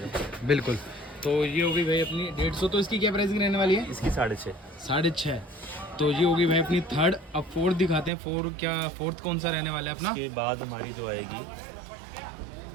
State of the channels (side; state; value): left; drops out; at 8.1 s